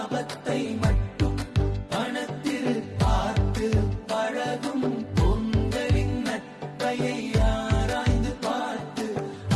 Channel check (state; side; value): identical; both; correlation 1.00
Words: மட்டும் பணத்தில் பார்த்து பழகும் பொங்கலின் நட்பையை ஆராய்ந்து பார்த்து